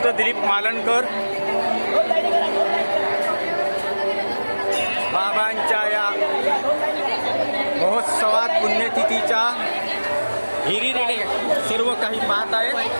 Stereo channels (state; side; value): inverted; both; correlation -1.00